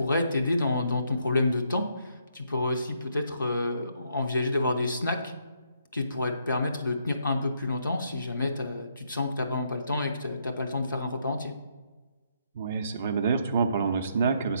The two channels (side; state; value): both; inverted; correlation -0.74